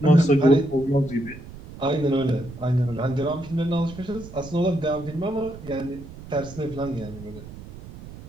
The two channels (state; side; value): noise; right; rumble, 15 dB below the sound